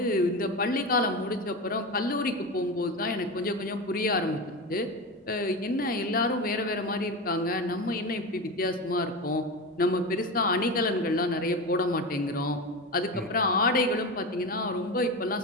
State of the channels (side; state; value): both; normal; correlation 0.23